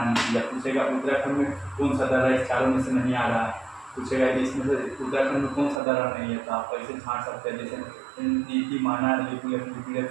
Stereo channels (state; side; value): drops out; left; at 5.8 s